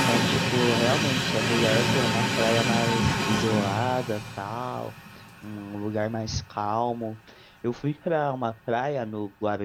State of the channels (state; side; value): identical; both; correlation 1.00